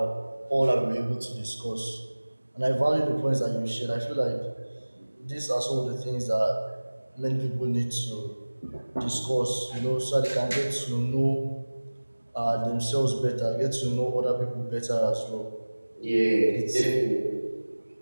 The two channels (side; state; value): both; inverted; correlation -1.00